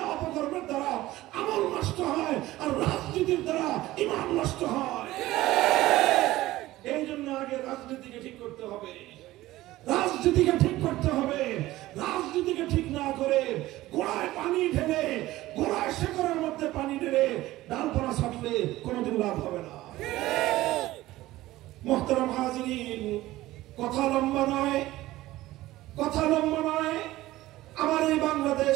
অপকর্মের দ্বারা আমল নষ্ট হয়, আর রাজনীতির দ্বারা ইমান নষ্ট হয়। এই জন্য আগে রাজনীতিকে ঠিক করতে হবে, রাজনীতিকে ঠিক করতে হবে। রাজনীতিকে ঠিক না করে গোড়ায় পানি ঢেলে, গোড়ায় শেকড়ের মধ্যে পানি ঢেলে ডালপালা ছাড়লে কোনোদিন লাভ হবে না। মুহতারাম হাজিরিন, কথা লম্বা নয়, কথা লম্বা নয়। আমার এই বাংলাদেশ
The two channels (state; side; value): quieter; left; 16.8 dB